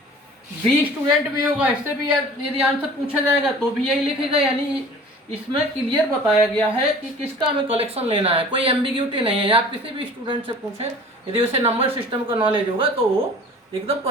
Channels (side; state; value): both; normal; correlation 0.45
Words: बी स्टूडेंट भी होगा, इससे भी यदि आंसर पूछा जाएगा तो भी यही लिखेगा. यानी इसमें क्लियर बताया गया है कि किसका हमें कलेक्शन लेना है, कोई एम्बिग्यूटी नहीं है. आप किसी भी स्टूडेंट से पूछें, यदि उसे नंबर सिस्टम का नॉलेज होगा तो वो एकदम